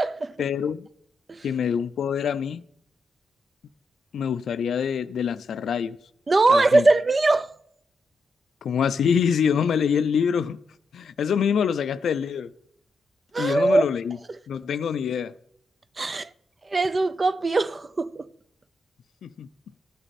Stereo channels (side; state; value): both; normal; correlation 0.84